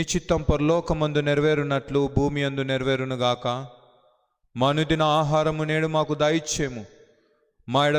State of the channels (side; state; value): both; identical; correlation 1.00